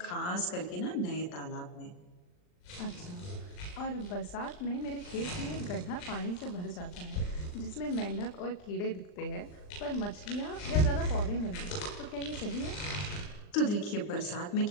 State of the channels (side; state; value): right; late; 39 ms